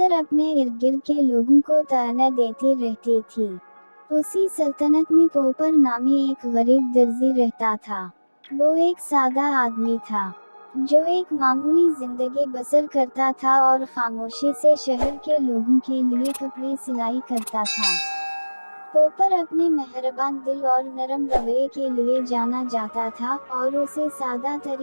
अपने इर्द गिर्द के लोगों को ताना देती रहती थी। उसी सल्तनत में पोपर नामी एक गरीब दर्जी रहता था। वो एक सादा आदमी था जो एक मामूली जिंदगी बसर करता था और खामोशी से शहर के लोगों के लिए कपड़े सिलाई करता था। पोपर अपने मेहरबान दिल और नरम रवैये के लिए जाना जाता था और उसे सादा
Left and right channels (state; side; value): inverted; both; correlation -1.00